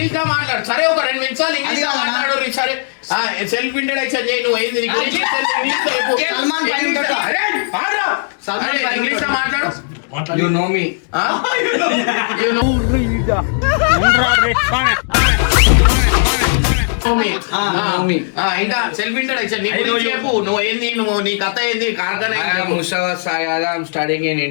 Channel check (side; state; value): right; silent; digital silence